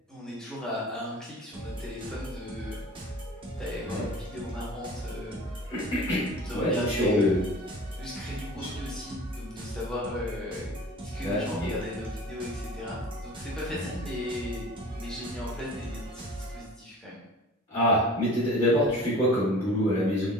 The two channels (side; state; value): both; normal; correlation 0.42